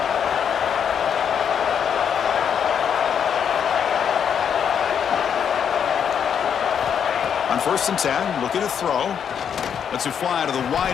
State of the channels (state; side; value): quieter; right; 7.9 dB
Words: On 1st and 10, looking to throw. Lets it fly to the